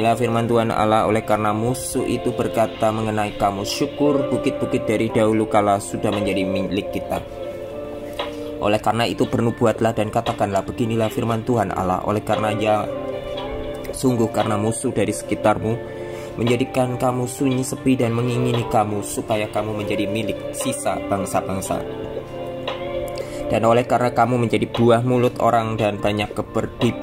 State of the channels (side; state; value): both; identical; correlation 1.00